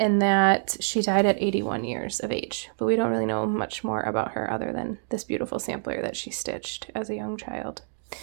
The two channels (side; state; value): left; silent; digital silence